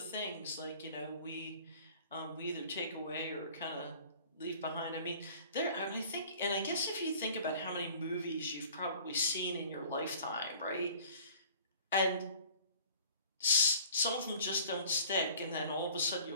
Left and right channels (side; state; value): both; inverted; correlation -0.49